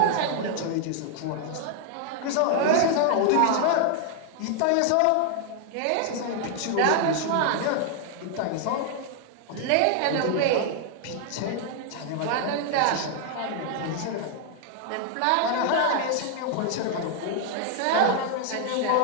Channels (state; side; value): different; both; correlation 0.00